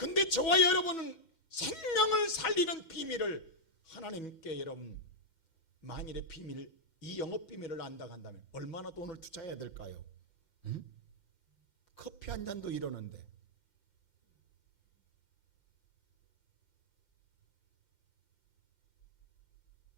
저와 여러분은 생명을 살리는 비밀을 하나님께 여러분 만일의 비밀, 이 영업 비밀을 안다고 한다면 얼마나 돈을 투자해야 될까요? 응? 커피 한 잔도 이러는데.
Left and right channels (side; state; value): right; late; 5.8 ms